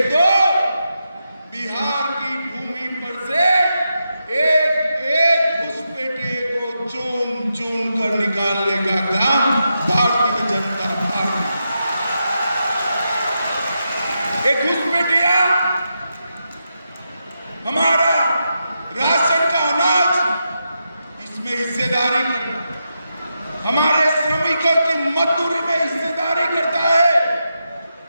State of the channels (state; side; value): inverted; both; correlation -0.86